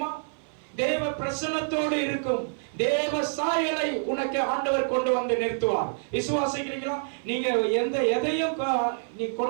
தேவ பிரசன்னத்தோடு இருக்கும். தேவ சாயலை உனக்கு ஆண்டவர் கொண்டு வந்து நிறுத்துவார். விசுவாசிக்கிறீங்களா? நீங்க எதையும் நீ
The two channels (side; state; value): left; silent; 58 dB below the other